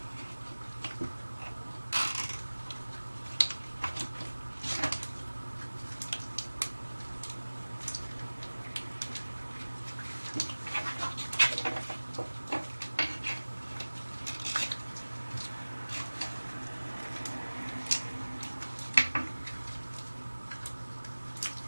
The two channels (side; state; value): both; inverted; correlation -1.00